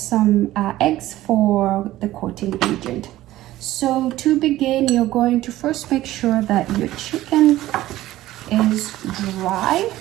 eggs for the coating agent. So to begin, you're going to first make sure that your chicken is dry.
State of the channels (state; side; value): quieter; left; 15.4 dB